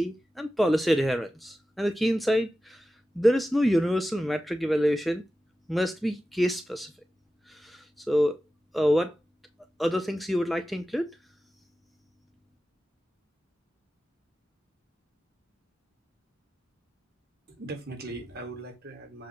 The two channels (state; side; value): normal; both; correlation 0.94